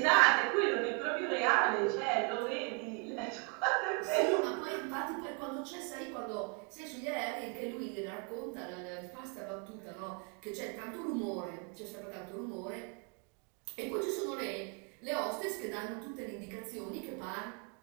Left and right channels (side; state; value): left; quieter; 34.3 dB